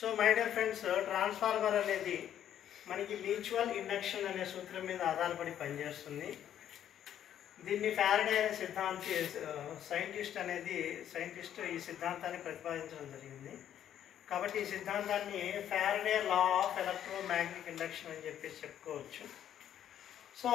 my dear friends, transformer అనేది మనకి మ్యూచువల్ ఇండక్షన్ అనే సూత్రం మీద ఆధారపడి పనిచేస్తుంది. దీన్ని ఫారడే అనే సైంటిస్ట్ ఈ సిద్ధాంతాన్ని ప్రతిపాదించడం జరిగింది. కాబట్టి ఈ సిద్ధాంతాన్ని Faraday law of electromagnetic induction అని చెప్పేసి చెప్పుకోవచ్చు. సో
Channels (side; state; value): right; quieter; 10.4 dB